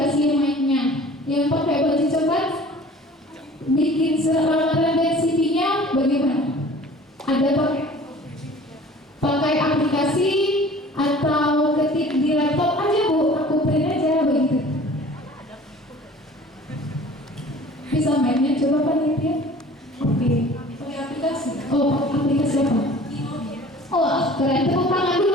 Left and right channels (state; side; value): normal; both; correlation 0.47